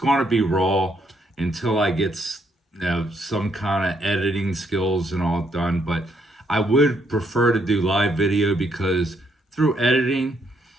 be raw until I get some kind of editing skills and all done. But I would prefer to do live video because through editing,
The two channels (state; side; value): normal; both; correlation 0.73